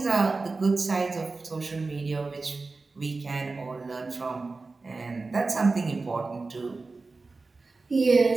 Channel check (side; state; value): left; quieter; 3.8 dB